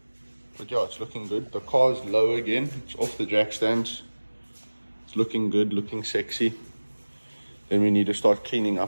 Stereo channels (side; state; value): both; inverted; correlation -1.00